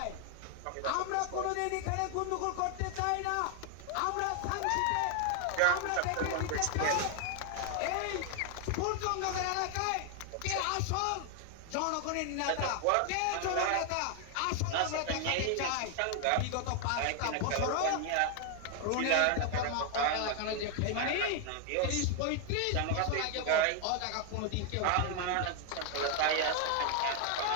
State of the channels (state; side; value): different; both; correlation 0.00